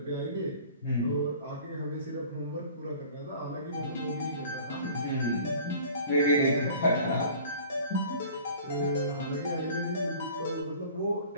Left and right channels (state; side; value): inverted; both; correlation -0.46